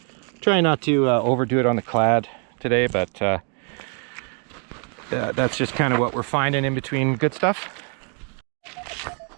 Try not to overdo it on the clad today, but that's just kind of what we're finding in between good stuff.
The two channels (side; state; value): left; quieter; 38.4 dB